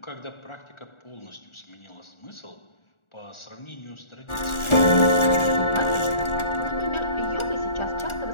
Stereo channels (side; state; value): right; late; 1.4 ms